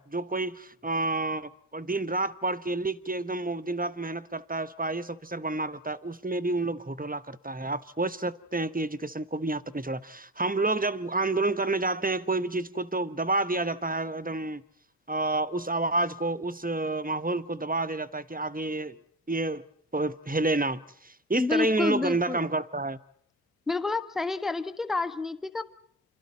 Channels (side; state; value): both; normal; correlation 0.22